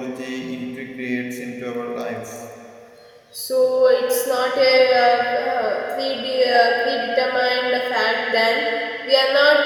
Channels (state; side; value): identical; both; correlation 1.00